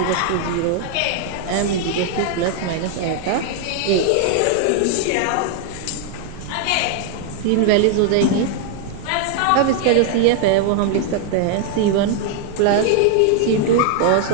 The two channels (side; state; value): both; different; correlation 0.00